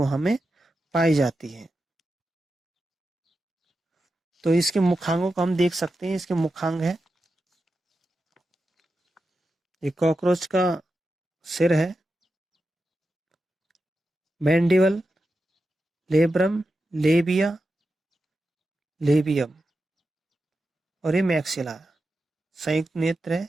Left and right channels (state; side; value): normal; both; correlation 0.90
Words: में पाई जाती है। तो इसके मुखांगों को हम देख सकते हैं। इसके मुखांग है, ये कॉकरोच का सिर है, मैंडिबल, लेब्रम, लेबिया, लेबियम और ये मैक्सिला, संयुक्त नेत्र है